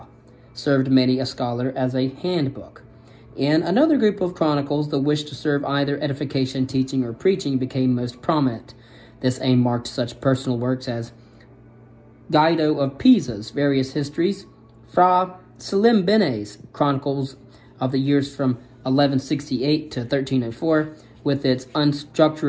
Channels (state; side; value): identical; both; correlation 1.00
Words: served many a scholar as a handbook. In another group of chronicles, the wish to serve either edification, teaching, or preaching became most prominent. This aim marked such personal works as Guido of Pisa's various histories, Fra Salimbene's Chronicles of the years from 1168 to 1304, with its